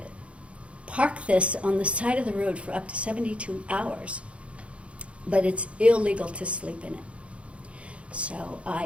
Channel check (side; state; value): left; late; 0.061 ms